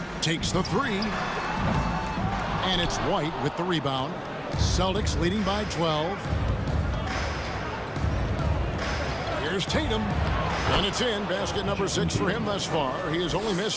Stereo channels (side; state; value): both; identical; correlation 1.00